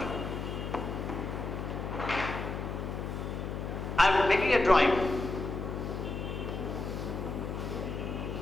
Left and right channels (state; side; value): noise; left; hum, 4 dB below the sound